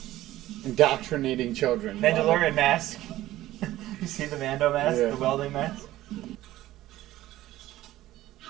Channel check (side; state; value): left; quieter; 15.3 dB